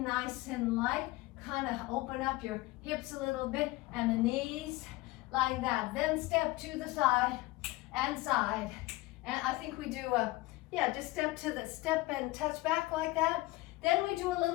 and light. kind of open up your hips a little bit and the knees like that. Then step to the side and side. And I think we do just step and touch back like that. Then we do a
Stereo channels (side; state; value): right; quieter; 19.6 dB